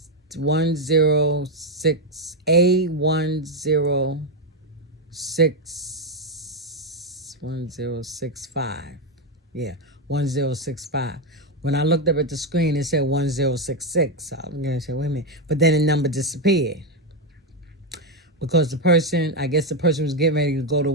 Yeah, 1065. When I looked up at the screen, it said 1066. So I'm going to say, wait a minute. But then the number disappeared. Because the person was getting ready to go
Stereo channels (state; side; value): normal; both; correlation 0.06